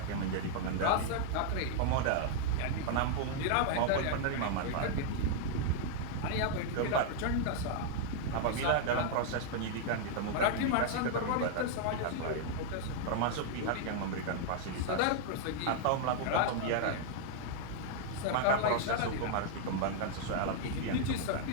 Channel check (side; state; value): both; different; correlation -0.01